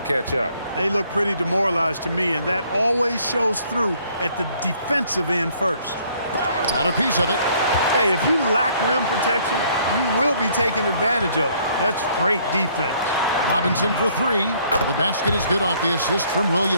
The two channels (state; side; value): inverted; both; correlation -0.63